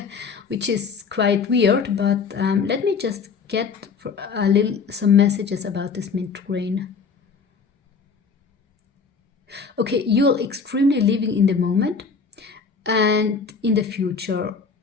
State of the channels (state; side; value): quieter; right; 5.3 dB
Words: Which is quite weird, but let me just get some messages about this mint green. Okay, you're extremely living in the moment and in the future.